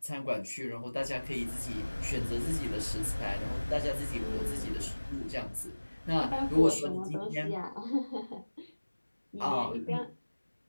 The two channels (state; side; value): inverted; both; correlation -1.00